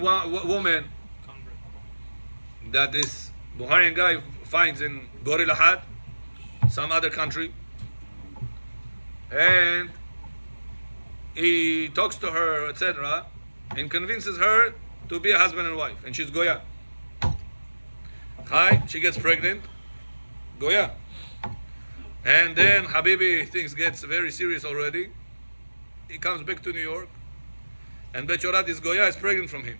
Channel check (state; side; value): inverted; both; correlation -1.00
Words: woman convert. that this Buharian guy finds in Gorilahat, some other country, and he talks to her, etc., and convinces her to be a husband and wife, and she's Goya. Hi, she gets pregnant, Goya. And then Habibi, things gets very serious already. He comes back to New York, and Bechorat, this Goya, is pregnant from him.